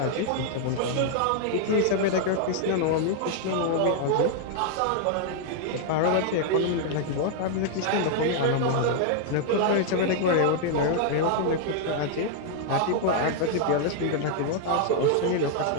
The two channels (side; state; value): both; different; correlation 0.00